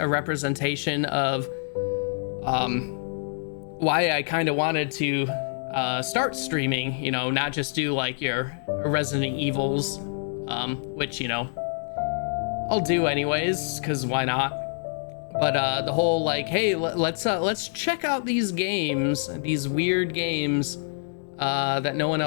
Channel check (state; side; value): silent; right; digital silence